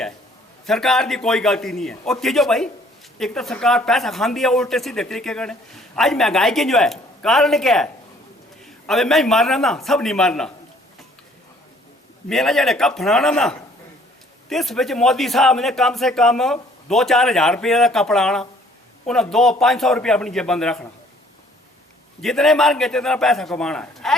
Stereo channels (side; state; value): both; normal; correlation 0.59